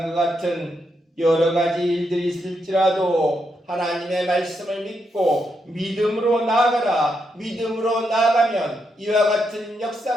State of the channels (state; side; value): normal; both; correlation 0.81